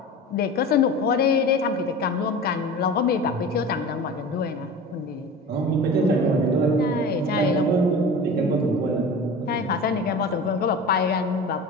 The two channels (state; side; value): normal; both; correlation 0.34